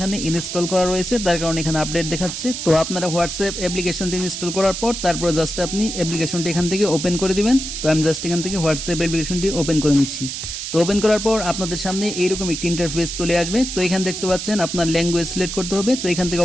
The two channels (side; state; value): right; noise; hiss, 6 dB below the sound